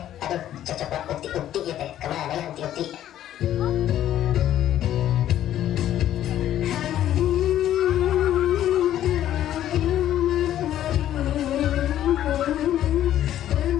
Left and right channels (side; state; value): right; quieter; 11.9 dB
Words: Aduh cocok lah ukti-ukti ya teh. Kemana ya ukti-ukti?